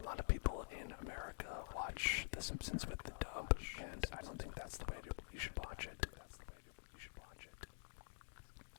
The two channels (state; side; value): silent; right; digital silence